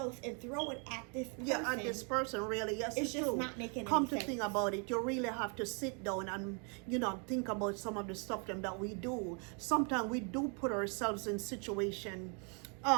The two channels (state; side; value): quieter; left; 37.6 dB